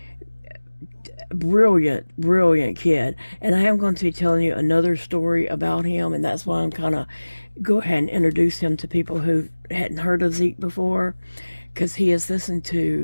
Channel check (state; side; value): inverted; both; correlation -1.00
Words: Brilliant kid. And I am going to be telling you another story about him, and that's why I'm kind of go ahead and introduce him to people who hadn't heard of Zeke before, because he has listened